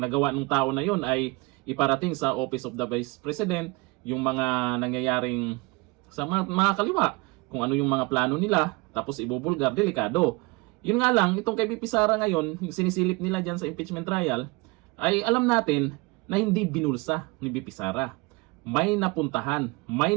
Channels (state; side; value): quieter; left; 25.1 dB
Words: nagawa ng tao na yun ay iparating sa Office of the Vice President yung mga nangyayaring sa mga kaliwa. Kung ano yung mga plano nila, tapos ibubulgar, delikado. Yun nga lang, itong kay BP Sara ngayon, yung sinisilip nila dyan sa impeachment trial, ay alam natin na hindi binulsa ni BP Sara. May napuntahan, may